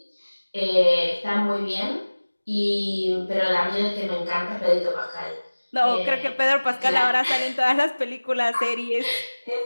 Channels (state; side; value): inverted; both; correlation -1.00